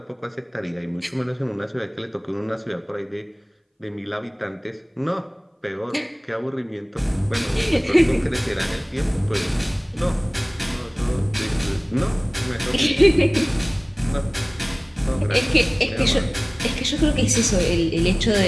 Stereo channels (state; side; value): identical; both; correlation 1.00